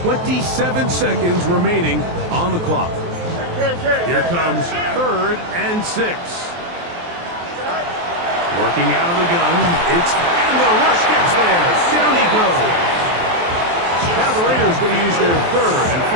27 seconds remaining on the clock. Here comes 3rd and 6. Working out of the gun. And the rush gets there. Down he goes. Now the Raiders going to use their 3rd and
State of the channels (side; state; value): left; late; 23 ms